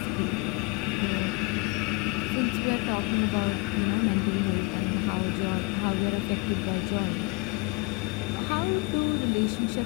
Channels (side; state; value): right; quieter; 25.0 dB